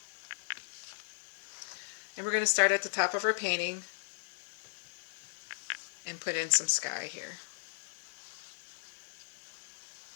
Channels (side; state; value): right; silent; digital silence